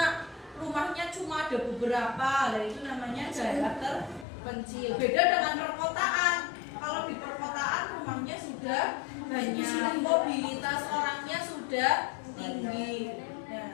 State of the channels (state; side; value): drops out; right; at 4.2 s